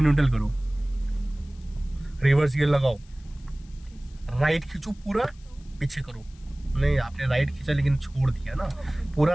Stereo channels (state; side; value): noise; left; hiss, 29 dB below the sound